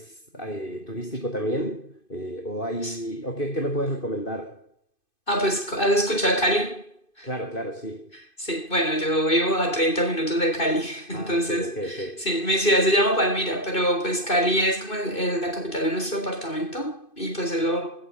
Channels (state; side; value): late; right; 2.5 ms